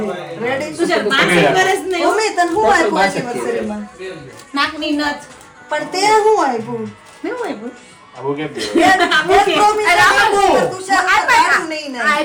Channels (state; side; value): identical; both; correlation 1.00